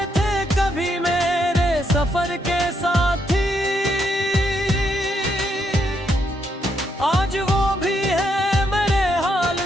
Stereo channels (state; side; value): normal; both; correlation 0.77